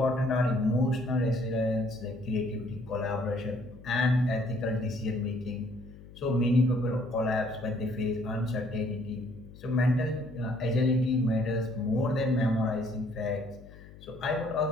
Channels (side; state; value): left; noise; hum, 19 dB below the sound